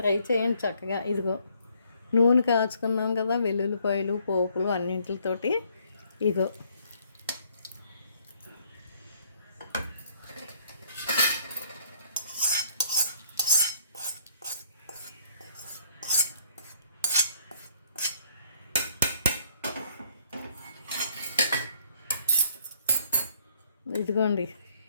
చేయండి చక్కగా. ఇదిగో నూనె కాచుకున్నాం కదా, వెల్లుల్లిపాయలు పోపులు అన్నింటితోటి. ఇదిగో ఇదిగోండి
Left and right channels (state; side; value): inverted; both; correlation -0.65